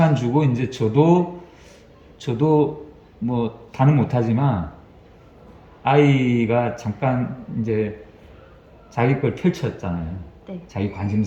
주고 이제 저도 뭐 다는 못하지만 아이가 잠깐 이제 자기 걸 펼쳤잖아요. 네. 자기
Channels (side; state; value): both; identical; correlation 1.00